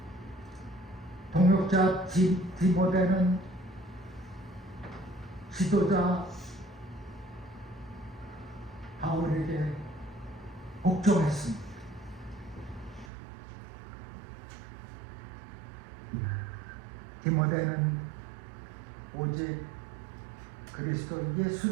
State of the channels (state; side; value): drops out; left; at 13.1 s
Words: 동역자 디모데는 지도자 바울에게 복종했습니다. 디모데는 오직 그리스도